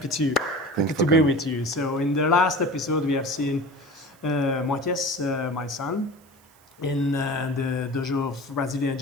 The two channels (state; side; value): noise; right; hiss, 30 dB below the sound